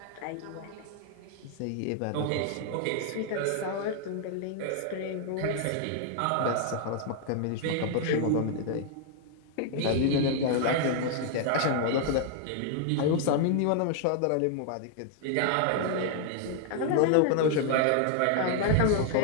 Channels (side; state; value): both; different; correlation 0.00